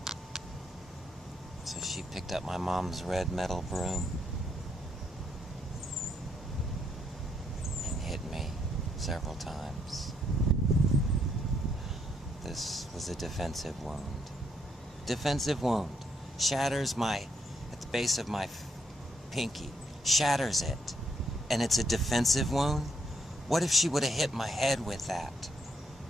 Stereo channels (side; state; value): both; normal; correlation 0.74